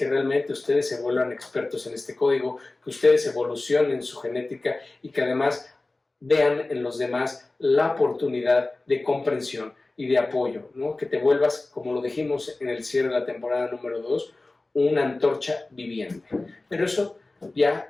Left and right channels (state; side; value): quieter; right; 3.1 dB